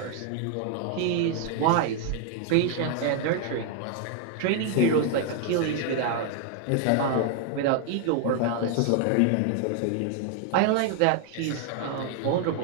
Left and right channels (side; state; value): both; different; correlation 0.00